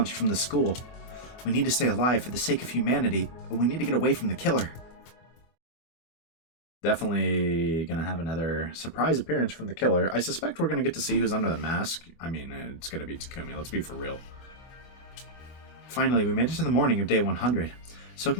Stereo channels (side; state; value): right; late; 24 ms